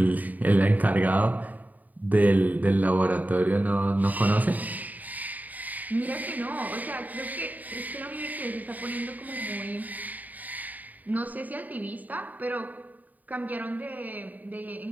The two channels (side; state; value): left; late; 0.080 ms